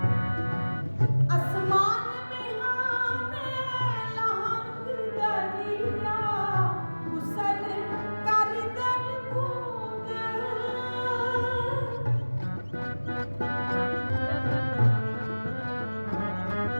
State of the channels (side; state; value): both; inverted; correlation -1.00